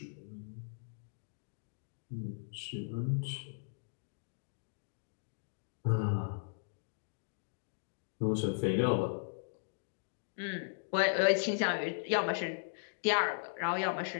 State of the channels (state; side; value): silent; right; digital silence